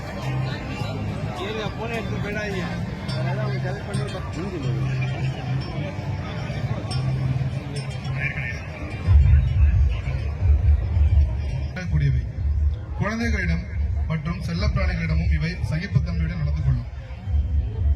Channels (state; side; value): identical; both; correlation 1.00